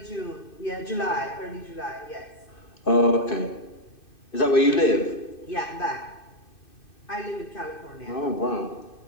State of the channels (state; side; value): late; right; 2.6 ms